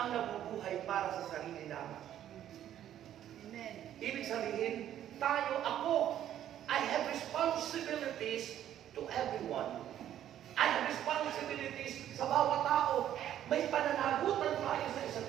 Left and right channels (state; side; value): quieter; left; 11.2 dB